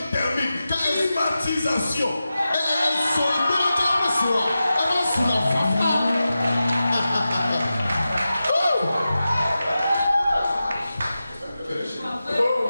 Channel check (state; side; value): inverted; both; correlation -0.93